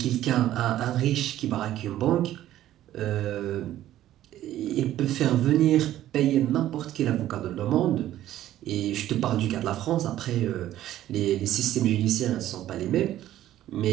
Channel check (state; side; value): quieter; left; 13.2 dB